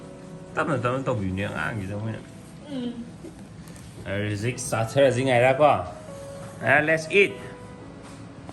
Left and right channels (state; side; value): identical; both; correlation 1.00